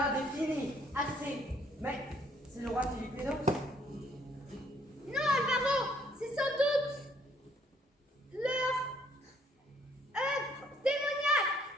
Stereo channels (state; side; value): normal; both; correlation 0.64